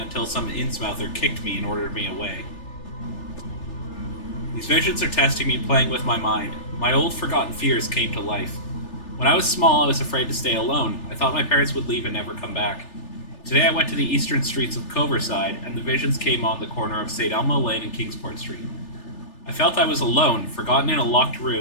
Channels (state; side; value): late; right; 3.3 ms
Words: some Innsmouther kicked me and ordered me away. These visions are testing me, playing with my mind. My old forgotten fears came to life. When I was small, I was afraid to stay alone. I thought my parents would leave and never come back. Today I went to the eastern streets of Coverside, and the visions came on the corner of St. Elmo Lane and Kingsport Street. I felt I was alone, forgotten in a locked